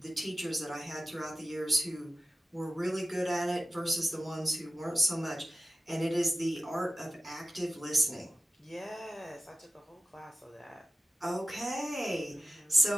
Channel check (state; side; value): normal; both; correlation 0.93